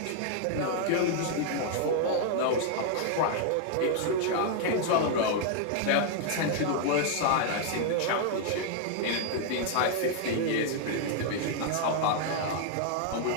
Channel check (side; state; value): both; different; correlation 0.00